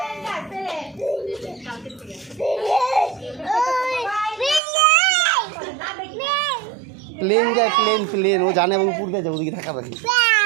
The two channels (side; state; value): left; drops out; at 4.6 s